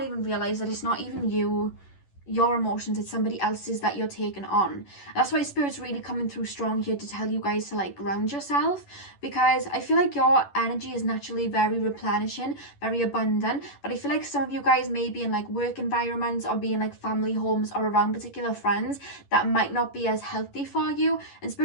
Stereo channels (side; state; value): right; late; 11 ms